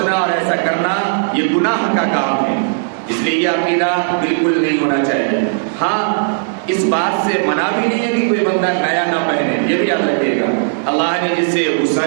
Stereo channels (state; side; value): silent; left; digital silence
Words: اور ایسا کرنا یہ گناہ کا کام ہے، اس لیے یہ عقیدہ بالکل نہیں ہونا چاہیے۔ ہاں، اس بات سے منع بھی نہیں ہے کہ کوئی بندہ نیا نہ پہنے، یہ بھی یاد رکھیے گا۔ اللہ نے جسے